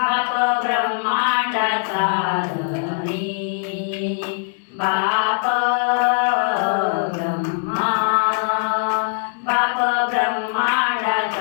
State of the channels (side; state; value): right; silent; digital silence